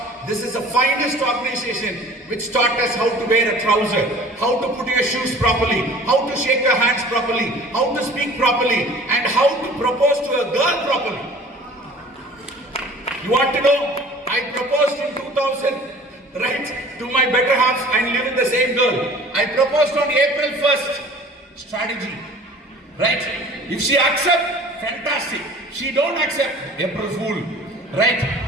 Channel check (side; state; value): both; normal; correlation 0.46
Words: this is the finest organization which taught us how to wear a trouser, how to put your shoes properly, how to shake your hands properly, how to speak properly, and how to propose to a girl properly. You want to know? I proposed in 2000, right, to my better half and live with the same girl. I proposed on April 1st. Strategy, right? If she accept, fantastic. She don't accept, April Fool, right?